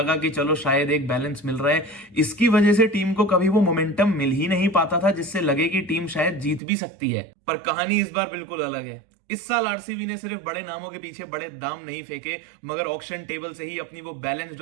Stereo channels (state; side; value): drops out; left; at 6.6 s